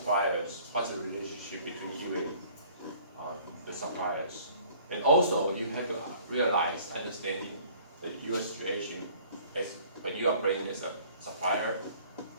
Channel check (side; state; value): both; inverted; correlation -0.54